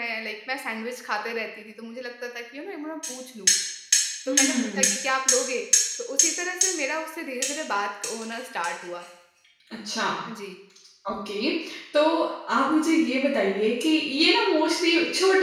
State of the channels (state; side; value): identical; both; correlation 1.00